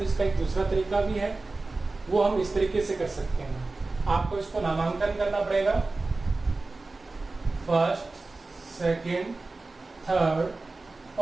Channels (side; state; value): left; quieter; 3.4 dB